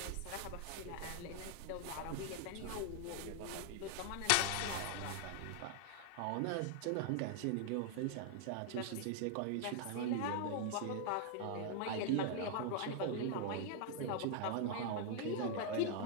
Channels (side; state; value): both; different; correlation 0.00